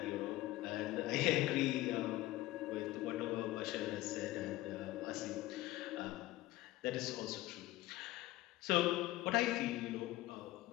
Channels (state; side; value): quieter; right; 16.9 dB